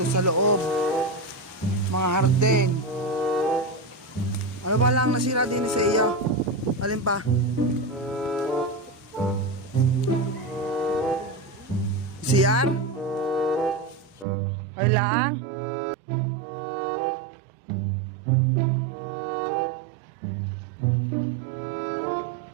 sa loob, mga hardin. Ano ba lang nasira din sa iyo? Alin pa? CR? Ay lang?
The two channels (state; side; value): drops out; left; at 14.2 s